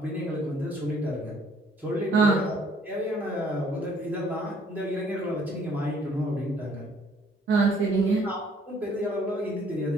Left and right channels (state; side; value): normal; both; correlation 0.61